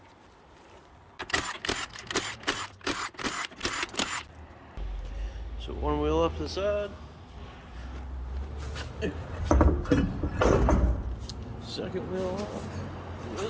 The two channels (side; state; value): both; identical; correlation 1.00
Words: So one wheel up to the side. Second wheel off.